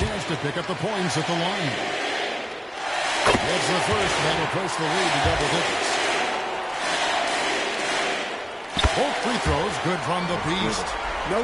to pick up the points at the line. That's the first. That'll push the lead to double digits. Both free throws good from the Beast. No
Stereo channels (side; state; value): both; identical; correlation 1.00